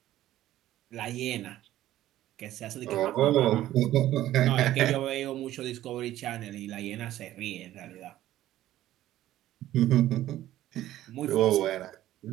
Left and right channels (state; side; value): quieter; left; 13.9 dB